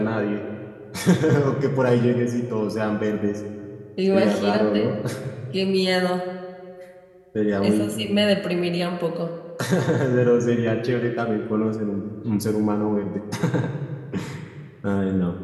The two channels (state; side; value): identical; both; correlation 1.00